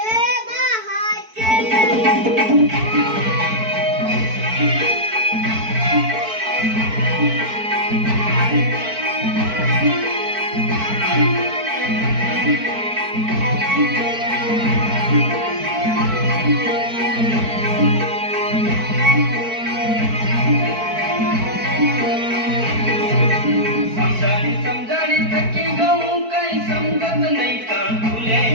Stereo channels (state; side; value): late; left; 4.5 ms